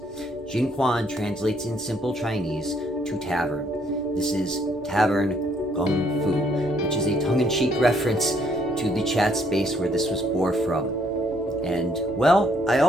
Jinguan translates in simple Chinese to tavern. This is Tavern Kung Fu, which is a tongue-in-cheek reference to the chat space where this was born from. And, well, I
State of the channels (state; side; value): normal; both; correlation 0.68